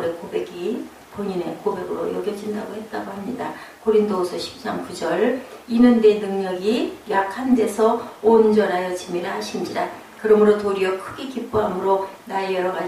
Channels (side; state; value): both; identical; correlation 1.00